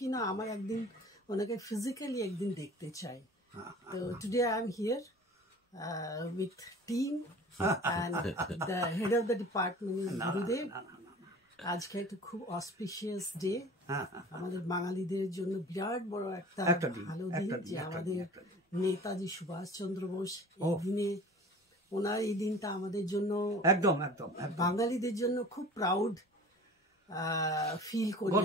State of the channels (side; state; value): both; normal; correlation 0.42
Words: না আমার একদিন ওনাকে ফিজিক্যালি একদিন দেখতে চাই। তো today I am here with team and the head of the department গুরুদেব। আজকে একটা খুব অসপিশিয়াস ডে আমাদের বাঙালিদের জন্য, বিরাট বড় একটা ভালো দিন যে আমাদের নেতাজি সুভাষচন্দ্র বোস এই দিনে, ওনার এই দিনটা আমাদের জন্য একদম বাঙালিদের জন্য খুব প্রাউড ফিল করি